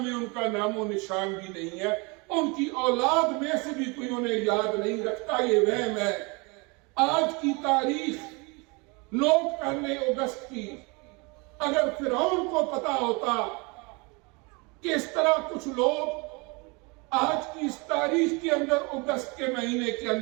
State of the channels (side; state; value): left; quieter; 28.9 dB